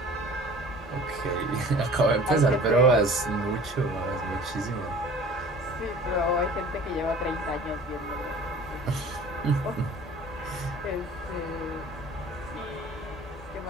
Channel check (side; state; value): both; normal; correlation 0.45